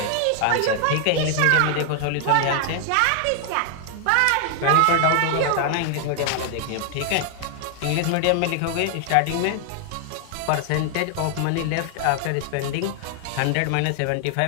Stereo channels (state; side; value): different; both; correlation 0.00